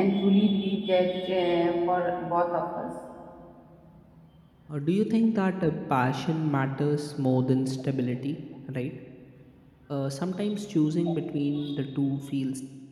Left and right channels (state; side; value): identical; both; correlation 1.00